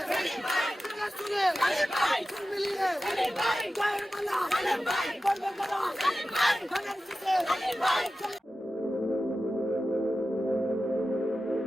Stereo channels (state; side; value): normal; both; correlation 0.94